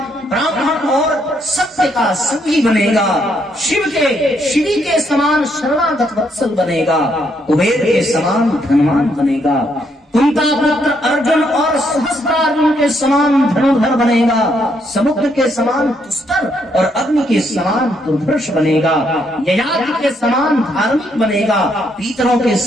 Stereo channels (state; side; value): normal; both; correlation 0.74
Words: ब्राह्मण और सत्य का संगी बनेगा, शिव के श्री के समान शरणागत वत्सल बनेगा, कुबेर के समान धनवान बनेगा, कुंता पुत्र अर्जुन और सहस्त्रार्जुन के समान धनुर्धर बनेगा, समुद्र के समान दुस्तर और अग्नि के समान दुर्धर्ष बनेगा, ययाति के समान धार्मिक बनेगा, पीतरों के